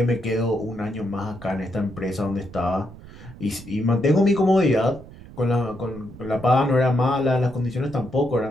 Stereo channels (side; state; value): right; noise; rumble, 17 dB below the sound